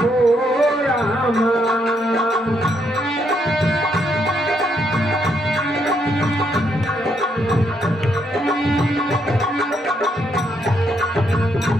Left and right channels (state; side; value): normal; both; correlation 0.75